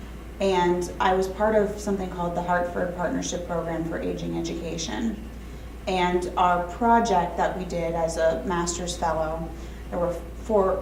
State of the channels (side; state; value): both; identical; correlation 1.00